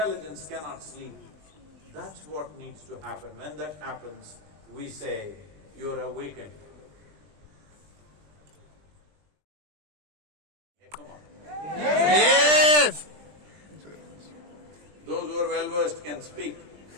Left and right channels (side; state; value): left; late; 20 ms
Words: cannot sleep. That's what needs to happen. When that happens, we say, you're awakened. Hey, come on. Yes! Those who are well-versed can speak.